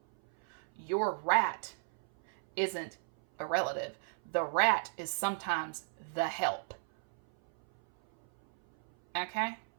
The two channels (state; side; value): silent; left; 55 dB below the other